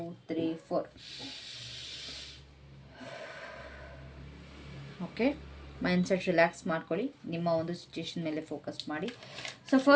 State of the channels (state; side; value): identical; both; correlation 1.00